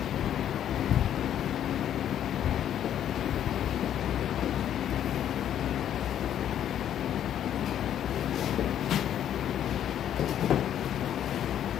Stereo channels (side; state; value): right; quieter; 10.4 dB